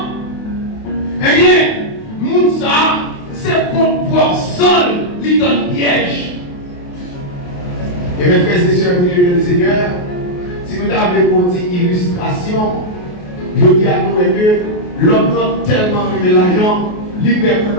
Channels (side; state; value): right; late; 28 ms